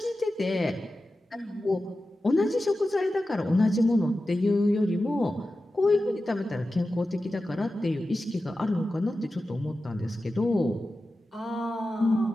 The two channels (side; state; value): both; normal; correlation 0.93